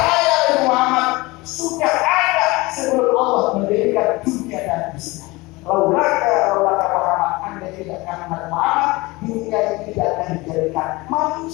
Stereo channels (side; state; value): right; quieter; 22.5 dB